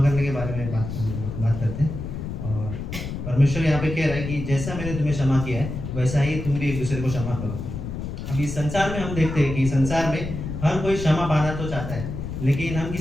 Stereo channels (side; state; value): left; noise; rumble, 6 dB below the sound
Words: करने के बारे में बात करते हैं। और परमेश्वर यहाँ पे कह रहा है कि जैसा मैंने तुम्हें क्षमा किया है, वैसा ही तुम भी एक दूसरे को क्षमा करो। अभी संसार में हम देखते हैं कि संसार में हर कोई क्षमा पाना तो चाहता है, लेकिन हम